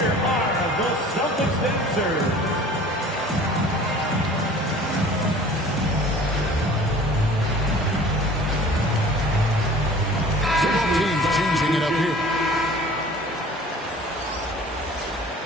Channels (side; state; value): both; normal; correlation 0.46